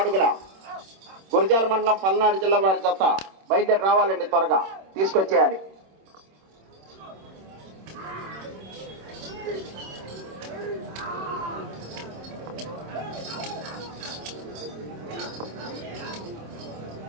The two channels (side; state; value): left; late; 26 ms